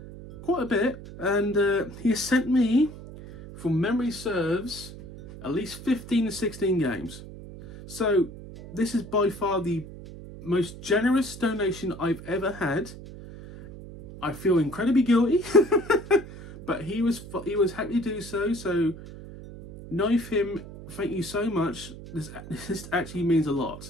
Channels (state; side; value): noise; right; hum, 14 dB below the sound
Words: quite a bit. And he has sent me, from memory serves, at least 15 to 16 games. So this is by far the most generous donation I've ever had. I feel incredibly guilty, but he was happy to do so. So Knife Him, thank you so much. This actually means a